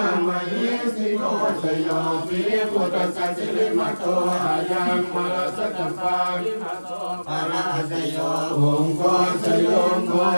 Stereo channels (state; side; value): inverted; both; correlation -1.00